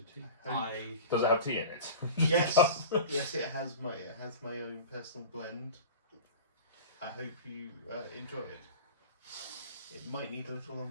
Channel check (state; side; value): inverted; both; correlation -0.34